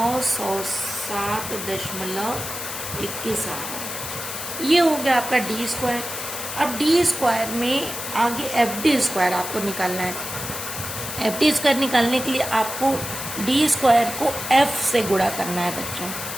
आ रहा है। ये हो गया आपका डी स्क्वायर। अब डी स्क्वायर में आगे एफ डी स्क्वायर आपको निकालना है। एफ डी स्क्वायर निकालने के लिए आपको डी स्क्वायर को एफ से गुणा करना है बच्चों।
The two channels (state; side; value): noise; left; hiss, 7 dB below the sound